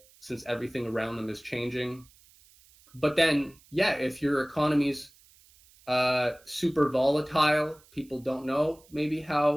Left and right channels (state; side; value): noise; right; hiss, 28 dB below the sound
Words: since everything around them is changing. But then, yeah, if your economy's super volatile, people don't know maybe